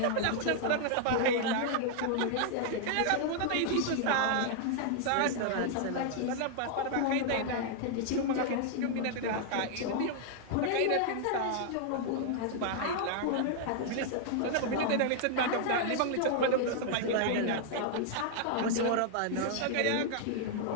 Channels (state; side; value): different; both; correlation 0.00